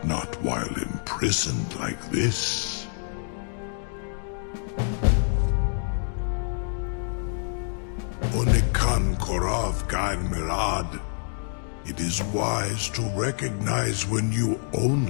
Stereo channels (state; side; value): silent; right; digital silence